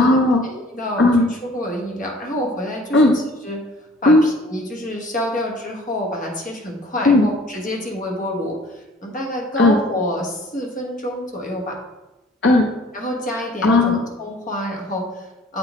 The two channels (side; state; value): both; normal; correlation 0.52